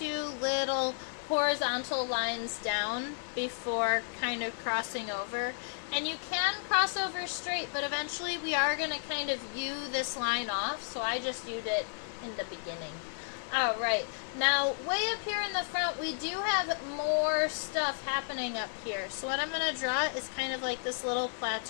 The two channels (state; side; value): silent; right; digital silence